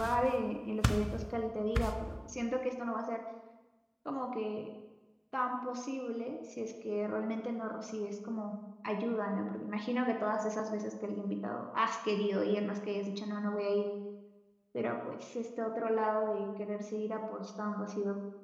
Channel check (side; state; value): both; identical; correlation 1.00